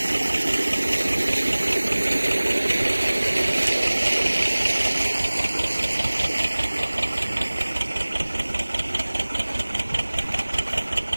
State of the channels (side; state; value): both; inverted; correlation -1.00